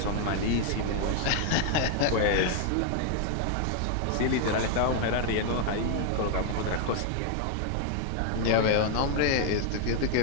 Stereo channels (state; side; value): different; both; correlation 0.00